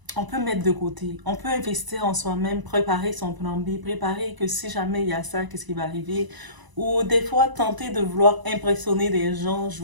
on peut mettre de côté. On peut investir en soi-même, préparer son plan B, préparer que si jamais il y a ça, qu'est-ce qui va arriver. Ou des fois, tenter de vouloir impressionner des gens,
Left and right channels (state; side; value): late; left; 1.0 ms